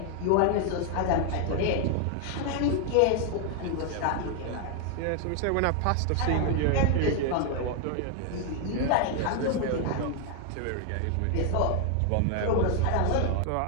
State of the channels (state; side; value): different; both; correlation 0.00